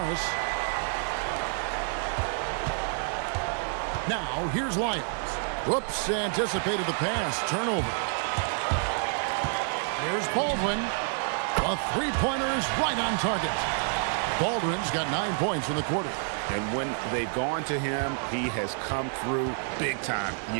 Now, here's Lyles. Whoops, anticipated the pass. Turnover. Here's Baldwin. A 3-pointer is right on target. Baldwin's got 9 points in the quarter. And when they've gone to him, he has come through big time.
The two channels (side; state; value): left; silent; 55 dB below the other